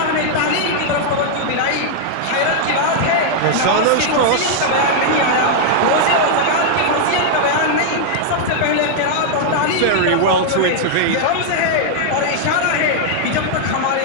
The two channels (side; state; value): both; different; correlation -0.01